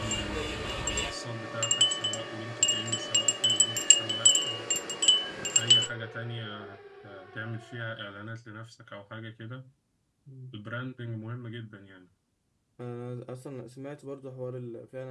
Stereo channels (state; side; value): identical; both; correlation 1.00